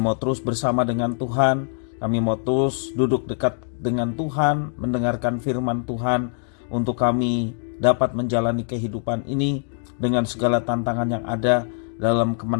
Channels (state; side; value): silent; right; 63 dB below the other